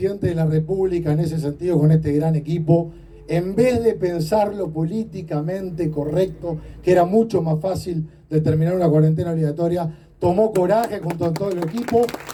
de la República, en ese sentido, con este gran equipo, en vez de pensarlo políticamente correcto, que era mucho más fácil determinar una cuarentena obligatoria, tomó coraje junto a todo el equipo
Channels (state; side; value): identical; both; correlation 1.00